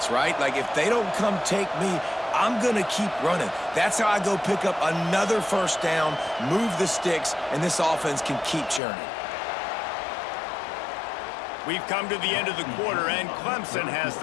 right? Like, if they don't come take me, I'm going to keep running. That's how I go pick up another first down, move the sticks, and this offense can keep churning. We've come to the end of the quarter, and Clemson has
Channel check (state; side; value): drops out; right; at 8.8 s